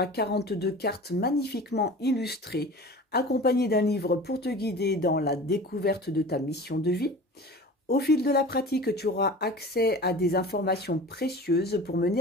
42 cartes magnifiquement illustrées, accompagnées d'un livre pour te guider dans la découverte de ta mission de vie. Au fil de la pratique, tu auras accès à des informations précieuses pour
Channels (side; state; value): both; normal; correlation 0.38